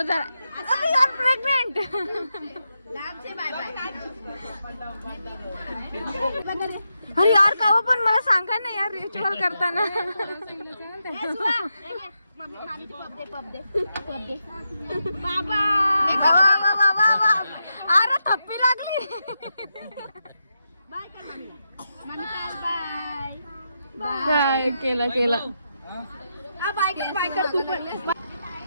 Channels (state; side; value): inverted; both; correlation -0.85